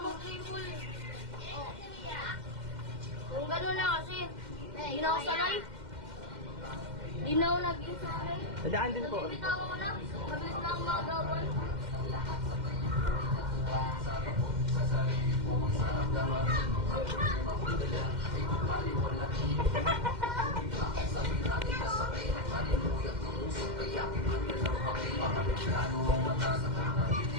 Mag-triple. Kung gano'n na kasi, hindi na ako sanay. Hindi na ako naging sanay. Nadaan din po. Bitaw ko na. Mabilis na ako magawan.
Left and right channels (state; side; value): late; left; 2.1 ms